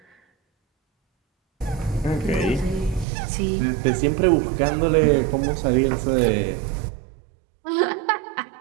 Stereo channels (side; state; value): left; drops out; at 3.1 s